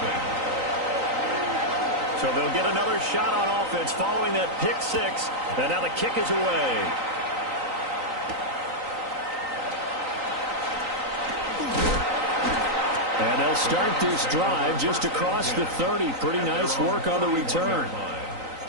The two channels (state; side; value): late; left; 3.9 ms